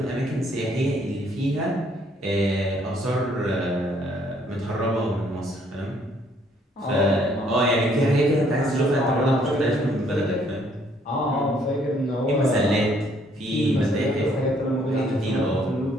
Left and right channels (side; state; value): both; normal; correlation 0.65